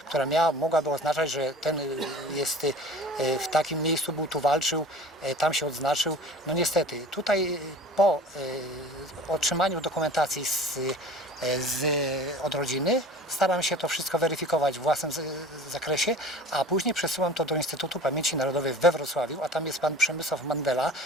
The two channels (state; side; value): normal; both; correlation 0.42